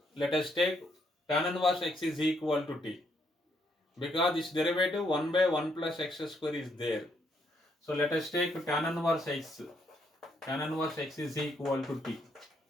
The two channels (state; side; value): normal; both; correlation 0.73